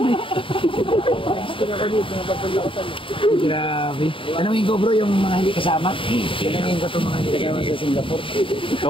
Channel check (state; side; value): late; right; 0.25 ms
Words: eh. Gusto na ako dito, papunta ako sa loob. Grabe. Tanungin ko bro yung mga hindi kasama. Tanungin ko itong mga hindi kasama sa Singapore.